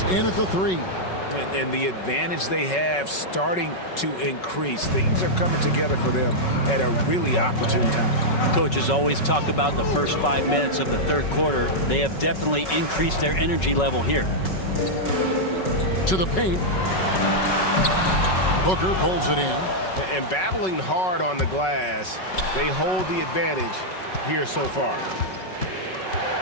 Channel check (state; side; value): late; right; 5.4 ms